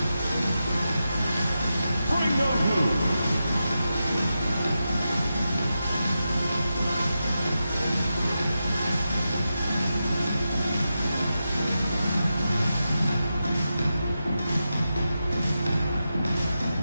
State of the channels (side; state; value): both; inverted; correlation -0.89